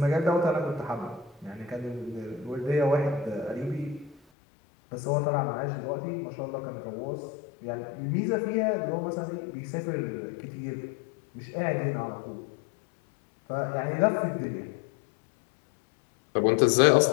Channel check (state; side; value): drops out; right; at 4.2 s